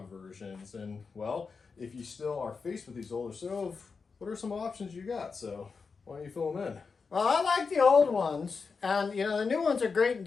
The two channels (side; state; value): right; quieter; 5.0 dB